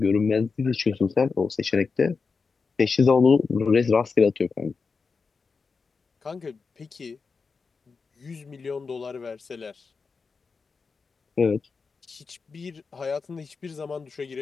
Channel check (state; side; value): quieter; right; 4.8 dB